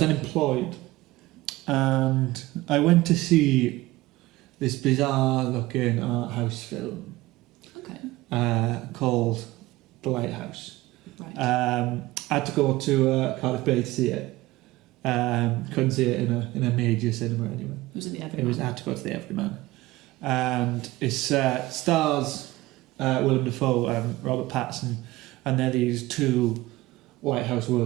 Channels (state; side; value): quieter; left; 18.7 dB